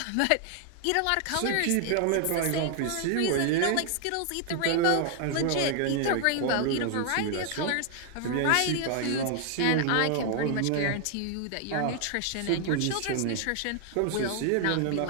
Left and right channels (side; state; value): both; different; correlation 0.00